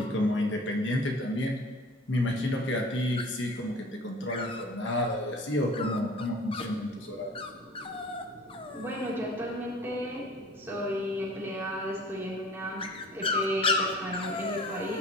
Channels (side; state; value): both; normal; correlation 0.45